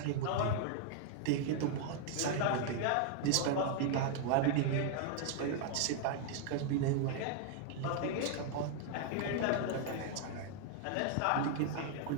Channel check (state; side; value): different; both; correlation 0.00